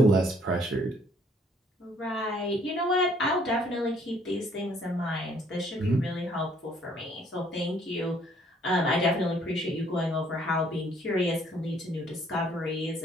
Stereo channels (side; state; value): both; normal; correlation 0.63